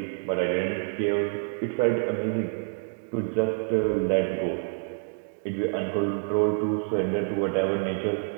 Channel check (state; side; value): silent; left; digital silence